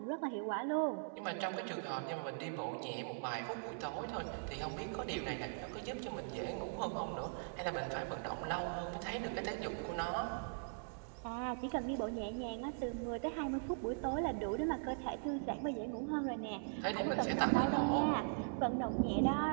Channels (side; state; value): left; silent; digital silence